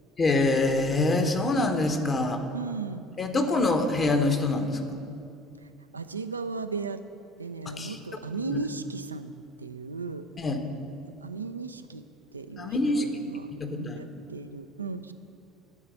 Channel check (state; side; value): normal; both; correlation 0.47